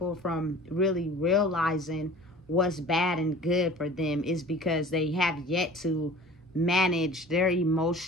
from really realizing what's bad and good for them is because they have yet to manage their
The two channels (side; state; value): both; normal; correlation 0.43